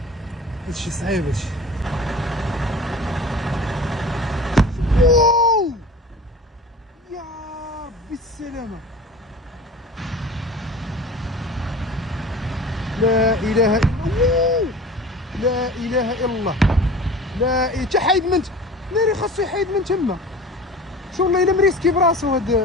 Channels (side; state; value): both; normal; correlation 0.40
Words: هادشي صعيب هادشي. واو يا ربي السلامة. لا اله الا الله. لا اله الا الله. لا تا حايد من ناري خاصو يحيد من تما. شو والله الا مريسكي براسو هاد